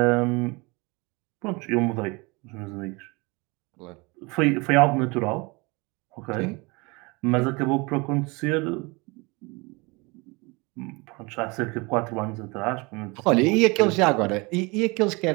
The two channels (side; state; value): left; quieter; 26.7 dB